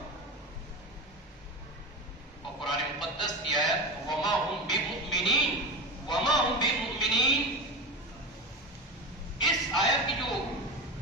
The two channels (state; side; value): normal; both; correlation 0.24